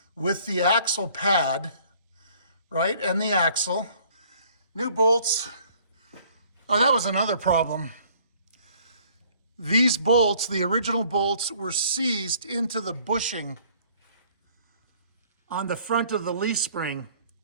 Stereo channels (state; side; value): inverted; both; correlation -0.58